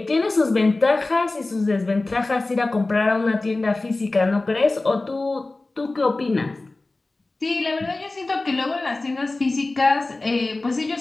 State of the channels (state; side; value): quieter; right; 3.1 dB